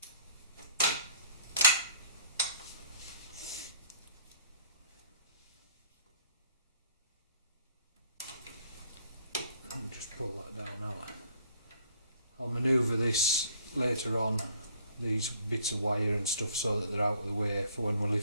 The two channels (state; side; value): inverted; both; correlation -0.58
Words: And just pull that down now. I'll manoeuvre this later on, these bits of wire and stuff, so that they're out of the way for when we